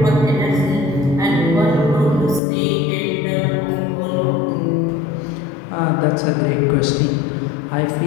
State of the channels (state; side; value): drops out; right; at 2.4 s